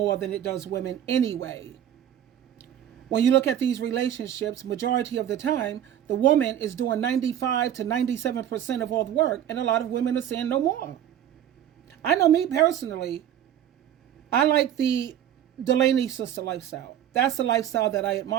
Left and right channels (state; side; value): quieter; left; 10.5 dB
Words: than it does women anyway. When you look at these relationships, majority of the time, the woman is doing 95 to 97% of all the work, and a lot of women are saying no more. I know me personally, I like the Delaney sister lifestyle. That's the lifestyle that I